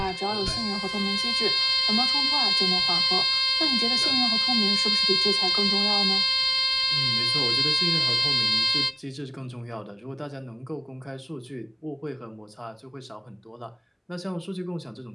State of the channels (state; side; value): identical; both; correlation 1.00